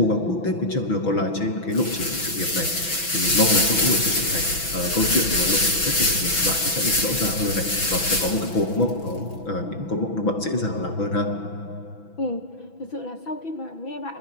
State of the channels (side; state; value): right; late; 6.1 ms